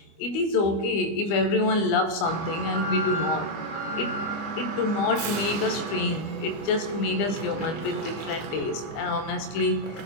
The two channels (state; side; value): late; right; 25 ms